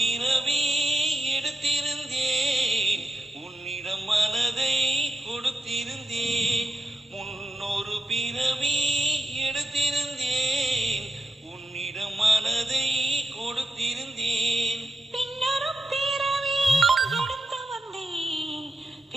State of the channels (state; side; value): normal; both; correlation 0.87